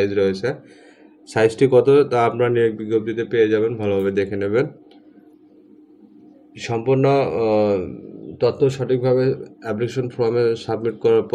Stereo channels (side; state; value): both; identical; correlation 1.00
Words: রয়েছে, সাইজটি কত তা আপনারা নিয়োগ বিজ্ঞপ্তিতে পেয়ে যাবেন, ভালোভাবে দেখে নেবেন। সম্পূর্ণ তথ্য সঠিকভাবে অ্যাপ্লিকেশন ফর্মে সাবমিট করার